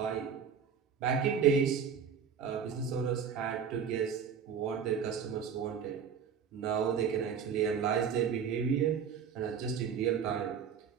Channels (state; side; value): quieter; left; 7.1 dB